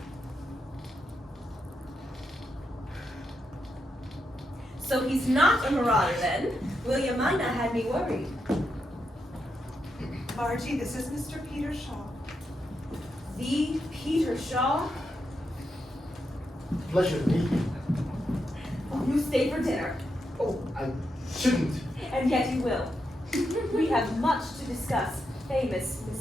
So he's not a marauder then. William Mina had me worried. Margie, this is Mr. Peter Shaw. The Peter Shaw? Pleasure to meet you. Oh, you stay for dinner. Oh, I shouldn't. And yet you will. We have much to discuss. Famous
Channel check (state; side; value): normal; both; correlation 0.84